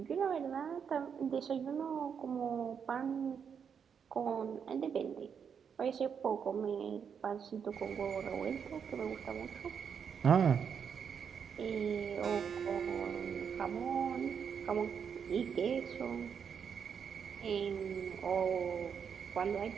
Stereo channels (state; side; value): quieter; left; 7.1 dB